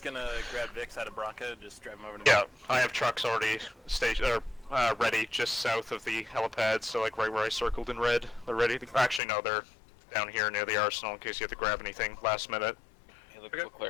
gonna grab Vix out of Bronca, just drive him over to Yeah, I have trucks already ready just south of the helipad, so like right where I circled in red. They're ready. Actually, no, they're down here near the arsenal in case you have to grab anything last minute. Hey, look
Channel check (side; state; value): right; drops out; at 9.2 s